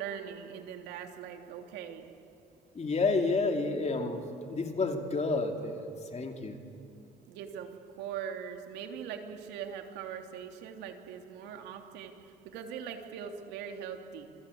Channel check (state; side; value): normal; both; correlation 0.46